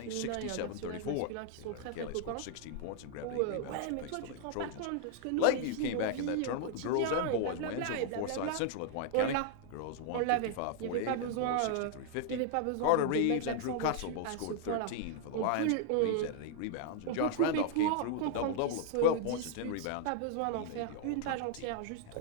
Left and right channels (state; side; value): different; both; correlation 0.00